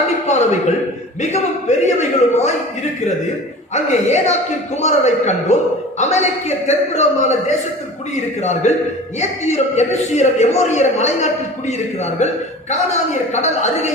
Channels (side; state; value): both; normal; correlation 0.39